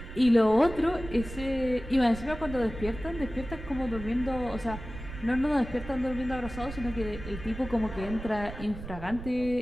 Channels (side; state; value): right; noise; rumble, 11 dB below the sound